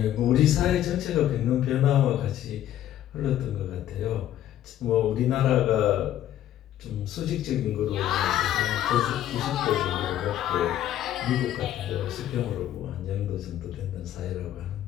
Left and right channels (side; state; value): right; quieter; 12.0 dB